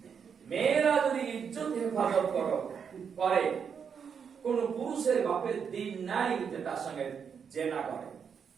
মেয়েরা যদি ইজ্জত হেফাজত করে, কোন পুরুষের বাপের দিন নাই যে তার সঙ্গে জেনা করে,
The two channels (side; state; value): left; quieter; 6.9 dB